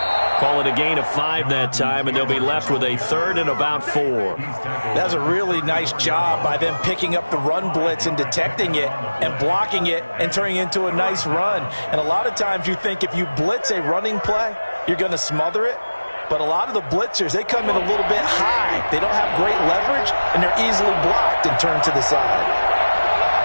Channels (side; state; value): both; inverted; correlation -1.00